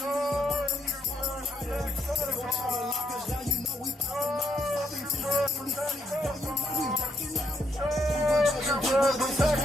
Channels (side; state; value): both; normal; correlation 0.76